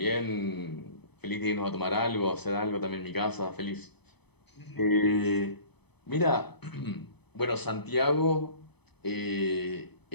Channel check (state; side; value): late; right; 0.98 ms